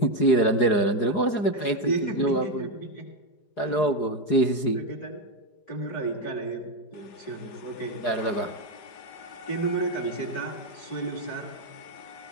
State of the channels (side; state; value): right; late; 4.8 ms